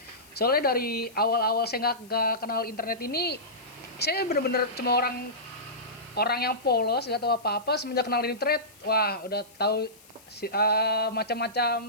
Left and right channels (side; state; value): left; noise; hiss, 25 dB below the sound